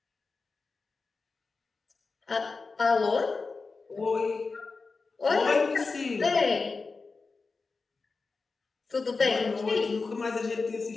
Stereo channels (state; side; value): quieter; right; 4.2 dB